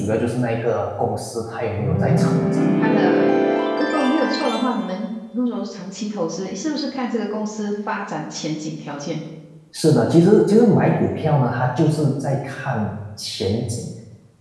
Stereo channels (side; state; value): both; identical; correlation 1.00